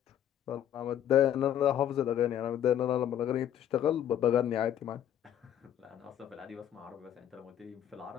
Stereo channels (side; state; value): right; quieter; 10.4 dB